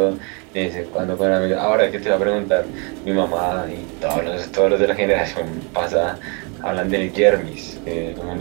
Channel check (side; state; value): left; quieter; 33.9 dB